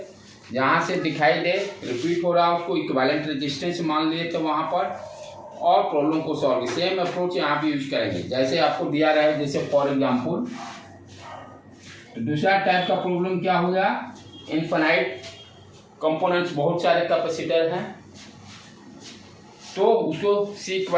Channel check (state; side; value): identical; both; correlation 1.00